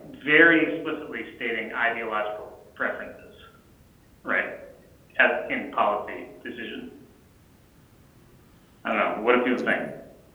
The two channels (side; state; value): both; identical; correlation 1.00